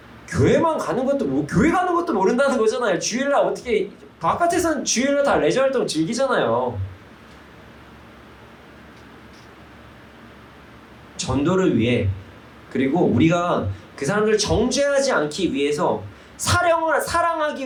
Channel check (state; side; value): identical; both; correlation 1.00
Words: 교회만 가는 것도 교회 가는 것도 모른다는 거잖아요. 주일날 어떻게 바깥에서는 주일날 다 레저 활동 즐기잖아요. 전도를 위해 그리고 우리가 그 사람들을 정죄하지 않기 위해서